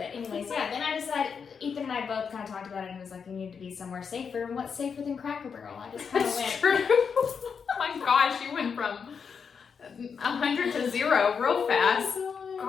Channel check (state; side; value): quieter; right; 6.3 dB